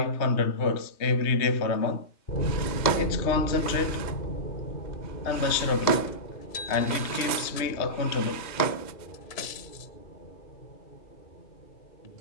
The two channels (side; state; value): right; late; 2.1 ms